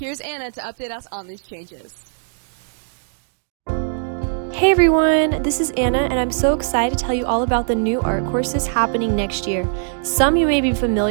Anna to update us on these changes. Hey everyone, this is Anna and I'm so excited to tell you all about the new art courses happening next year. Some you may be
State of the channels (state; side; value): silent; left; digital silence